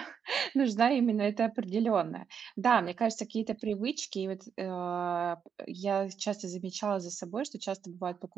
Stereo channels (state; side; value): quieter; left; 7.3 dB